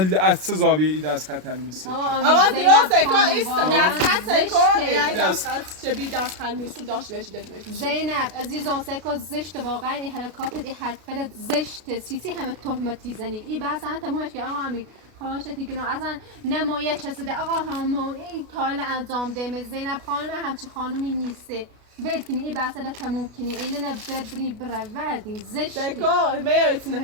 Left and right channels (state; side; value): late; left; 33 ms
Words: از چه زاویه ای دست خط میسی آقا درسته که ایست دست خط سکو یعنی دست خط چه بی دست خط میسی داشت بهش دلنه زینب عزیزان سکو زشت واقعا این حرکات این حرکت زشت سیسی همه تهمتی زنی این بحث هم تمومش که آقا امیر خواهشتی که اصلا نمایه چسیده آقا همو این کار انجام ده زینب خانم همچی خانومی نیسته ول کنی این بحث را تموم کنی اینه نه ببری بروردی زشته سکو میایتونه